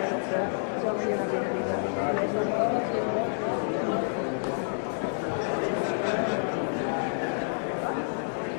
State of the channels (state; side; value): silent; right; digital silence